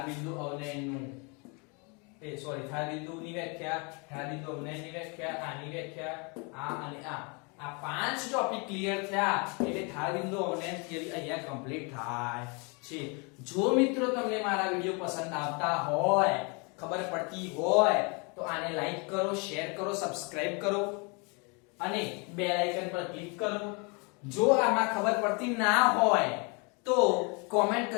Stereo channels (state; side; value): quieter; right; 32.2 dB